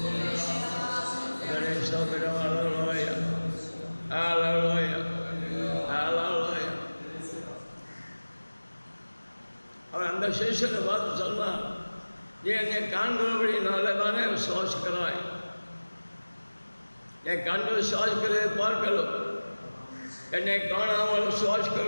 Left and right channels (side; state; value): both; inverted; correlation -1.00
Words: கர்த்தரை ஸ்தோத்திரம். அல்லேலூயா, அல்லேலூயா, அல்லேலூயா. அவர் அந்த சீசனை பார்த்து சொன்னார், நீ என்னை காண்கிறபடினால தானே விசுவாசிக்கிறாய். என் கண்டு விசுவாசிக்கிறதை பார்க்கலும், என்னை காணாமல்